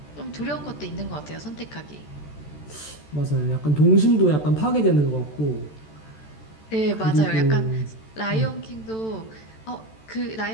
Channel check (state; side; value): late; right; 14 ms